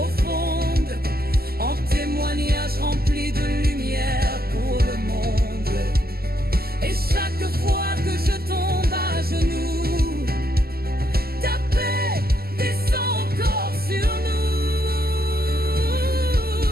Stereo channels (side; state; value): left; late; 0.45 ms